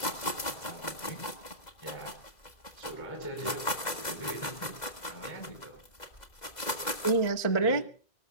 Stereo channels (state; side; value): late; right; 2.0 ms